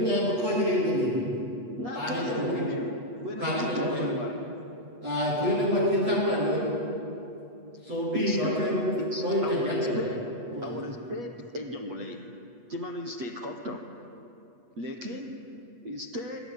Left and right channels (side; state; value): left; late; 8.3 ms